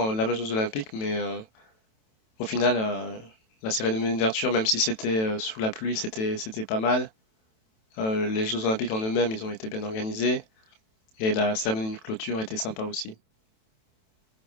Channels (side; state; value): right; late; 27 ms